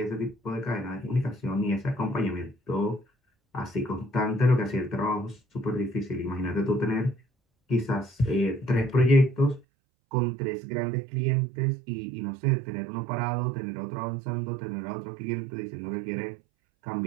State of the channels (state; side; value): drops out; left; at 9.6 s